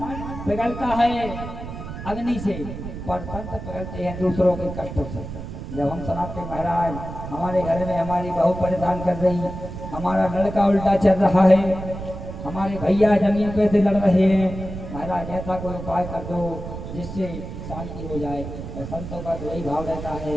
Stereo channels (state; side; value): noise; right; rumble, 9 dB below the sound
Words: पिघलता है अग्नि से, पर संत पिघलते हैं दूसरों के कष्टों से। जब हम सुनाते महाराज हमारे घर में हमारी बहू परेशान कर रही, हमारा लड़का उल्टा चल रहा है, हमारे भैया जमीन पे से लड़ रहे हैं, महाराज ऐसा कोई उपाय कर दो जिससे शांति हो जाए। और संतों का तो यही भाव रहता